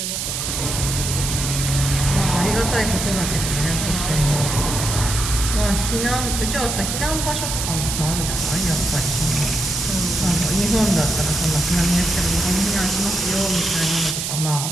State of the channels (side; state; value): right; noise; hiss, 3 dB below the sound